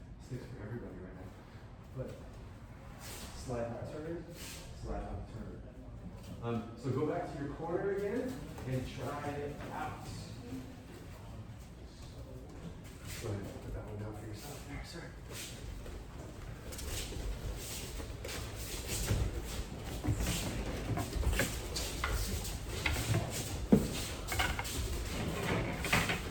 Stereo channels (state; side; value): identical; both; correlation 1.00